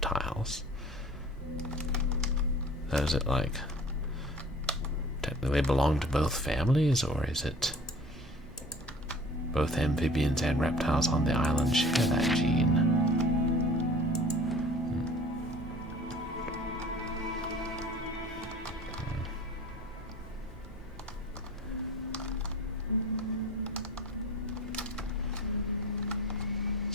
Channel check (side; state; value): both; normal; correlation 0.45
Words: Does it like technically belong to both families, or is it both amphibians and reptiles on the island share that gene?